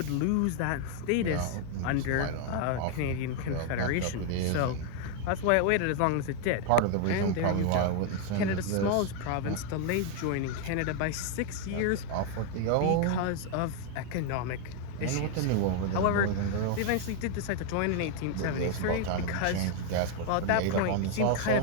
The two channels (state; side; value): different; both; correlation 0.00